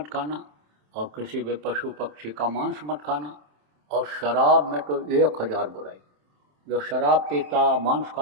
खाना, और किसी भी पशु पक्षी का मांस मत खाना। और शराब में तो 1000 बुराई। जो शराब पीता, मांस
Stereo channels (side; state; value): left; late; 27 ms